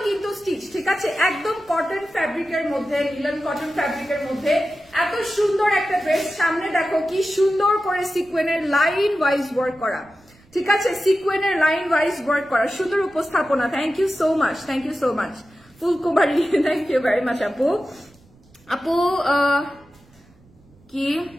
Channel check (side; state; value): right; noise; rumble, 29 dB below the sound